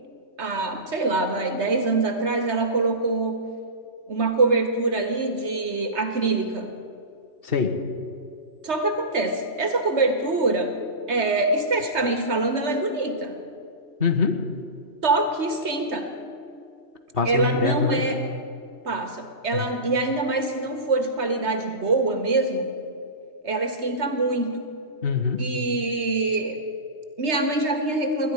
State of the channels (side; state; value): left; late; 3.3 ms